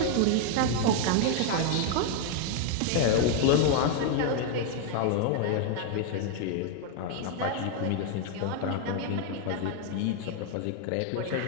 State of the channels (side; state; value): both; different; correlation 0.00